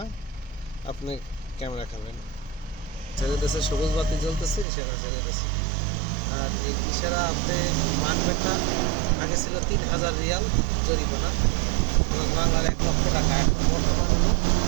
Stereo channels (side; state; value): left; drops out; at 4.7 s